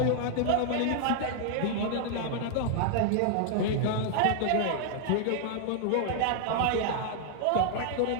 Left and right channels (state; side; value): different; both; correlation -0.01